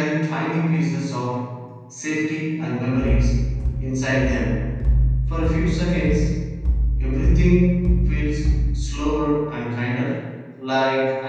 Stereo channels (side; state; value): both; identical; correlation 1.00